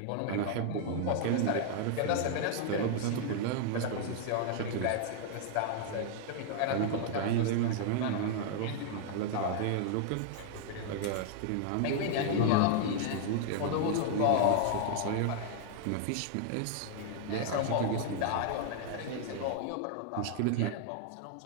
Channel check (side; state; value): both; different; correlation -0.01